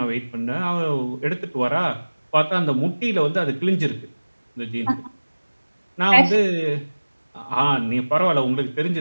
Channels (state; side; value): inverted; both; correlation -1.00